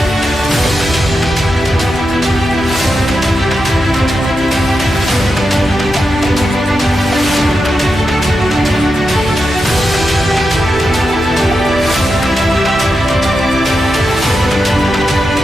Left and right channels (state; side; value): normal; both; correlation 0.88